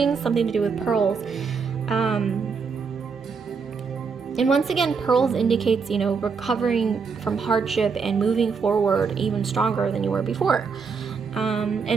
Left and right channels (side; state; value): left; quieter; 5.4 dB